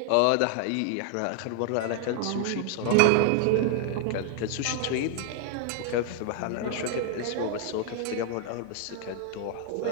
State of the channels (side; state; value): both; different; correlation 0.00